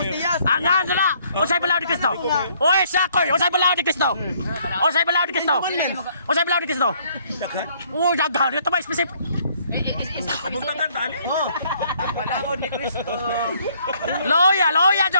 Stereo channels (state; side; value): inverted; both; correlation -0.65